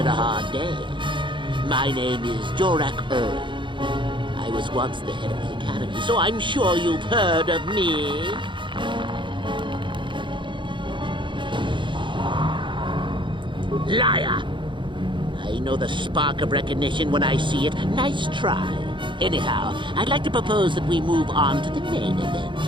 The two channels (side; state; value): left; late; 0.23 ms